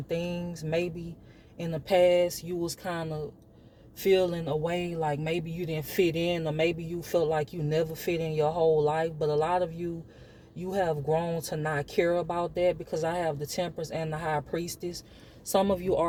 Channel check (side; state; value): both; identical; correlation 1.00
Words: things. Maybe in the past you was kind of feeling a way like maybe you didn't fit in, or maybe you felt like you never fit in your whole life. But a lot of you have grown to not care about that, because I have the Temperance and the High Priestess. Some of you